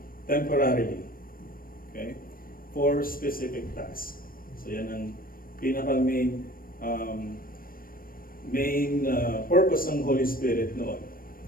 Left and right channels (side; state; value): right; late; 0.41 ms